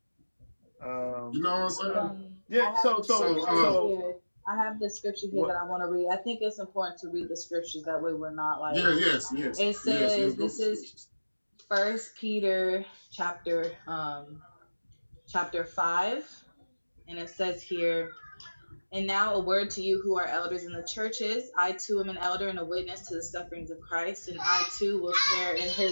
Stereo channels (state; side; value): inverted; both; correlation -1.00